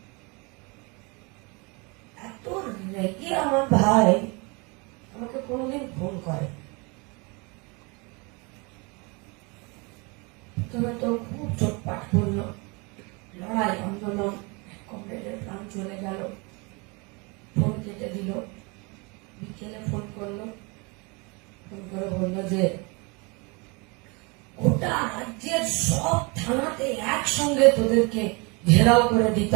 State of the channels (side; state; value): left; quieter; 29.4 dB